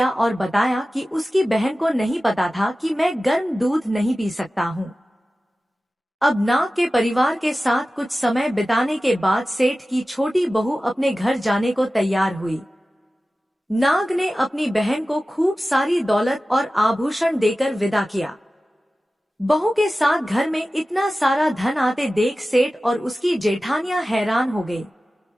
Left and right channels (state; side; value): normal; both; correlation 0.95